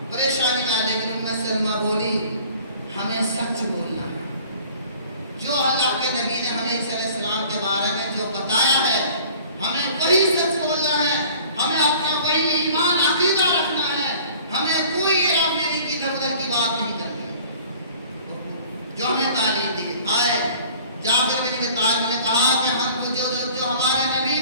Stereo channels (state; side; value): inverted; both; correlation -0.49